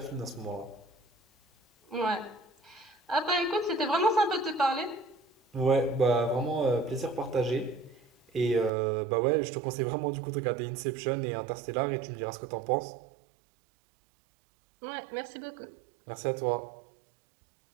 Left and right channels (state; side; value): drops out; left; at 8.7 s